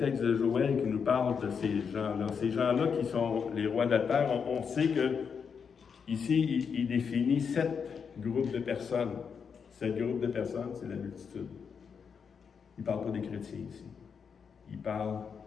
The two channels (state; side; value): quieter; right; 6.4 dB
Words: de Joël qui nous parle de ces gens-là. Ces gens-là qui sont les rois de la terre, on sait que ici, il définit 7 groupes de personnes. 7 groupes de personnes, c'est la multitude. Il ne parle pas des chrétiens ici. Il parle